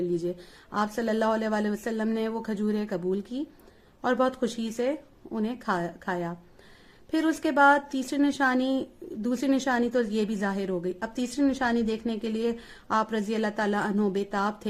لیجئے. آپ صلی اللہ علیہ وآلہ وسلم نے وہ کھجوریں قبول کی اور بہت خوشی سے انہیں کھایا. پھر اس کے بعد دوسری نشانی تو یہ بھی ظاہر ہو گئی. اب تیسری نشانی دیکھنے کے لیے آپ رضی اللہ تعالیٰ عنہ بےتاب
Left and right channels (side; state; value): both; identical; correlation 1.00